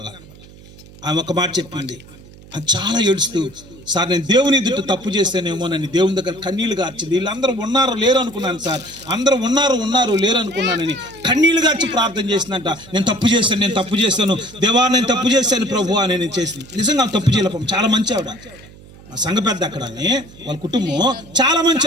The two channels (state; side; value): noise; right; hum, 21 dB below the sound